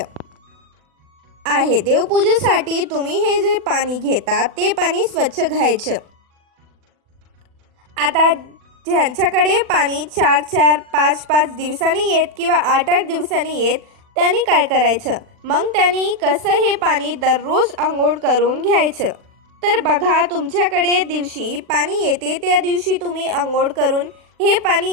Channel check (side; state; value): left; late; 40 ms